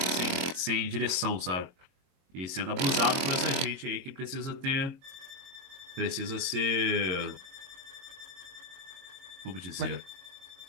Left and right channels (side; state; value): left; late; 22 ms